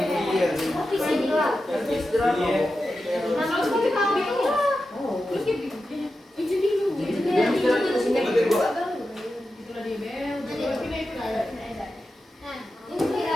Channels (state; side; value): normal; both; correlation 0.91